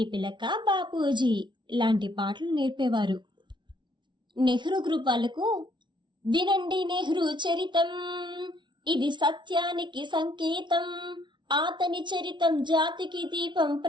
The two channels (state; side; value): late; left; 0.23 ms